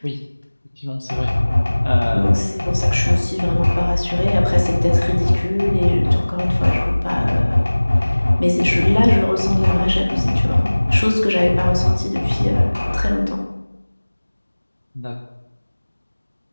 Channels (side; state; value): both; inverted; correlation -1.00